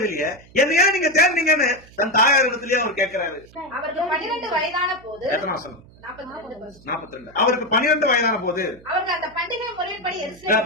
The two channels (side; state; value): right; noise; hum, 24 dB below the sound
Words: என்ன ஏன் நீங்க தேர்ந்தீங்கன்னு தன் தாயார் இடத்துலயே அவர் கேட்கிறாரு. அவருக்கு 12 வயதான போது, எத்தனை மாசம்? 42. அவருக்கு 12 வயதான போது அவருக்கு அந்த பண்டிகை முறைப்படி